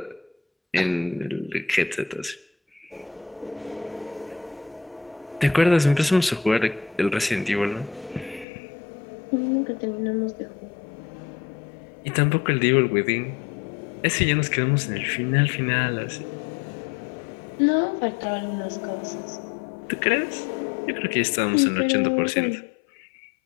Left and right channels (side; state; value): right; drops out; at 8.5 s